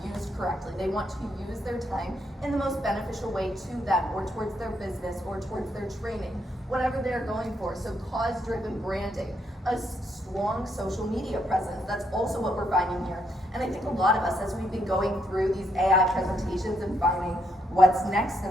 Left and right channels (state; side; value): normal; both; correlation 0.76